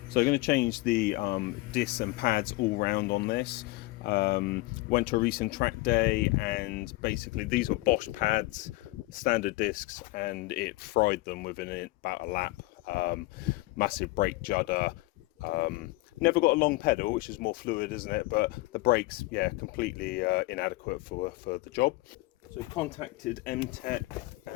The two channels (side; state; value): right; quieter; 21.2 dB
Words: So I'm going to change the discs and pads all round on this. Went to a recent track day, and basically these were Bosch pads, standard discs, and it fried them within about a lap. Massive brake judder. Never got a long pedal, which is more fluid, isn't it? But the brakes, yeah, completely inadequate for the job. So contacted MTEC,